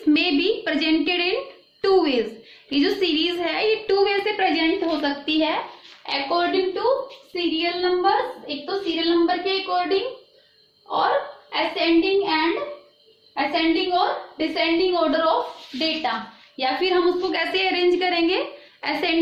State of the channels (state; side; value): identical; both; correlation 1.00